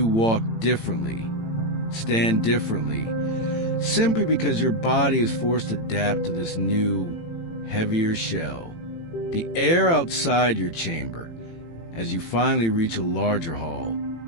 walk differently, stand differently, simply because your body is forced to adapt to this new, heavier shell. The air outside your chamber, as you finally reach a larger hall,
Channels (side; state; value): right; late; 18 ms